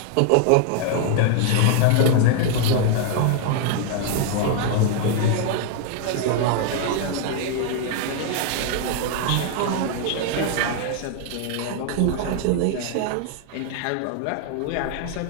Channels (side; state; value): both; different; correlation 0.00